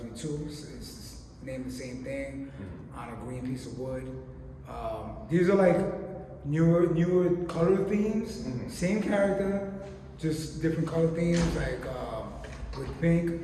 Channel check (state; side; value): identical; both; correlation 1.00